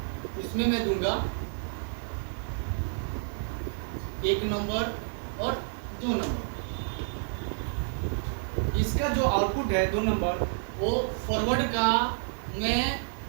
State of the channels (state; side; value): silent; left; digital silence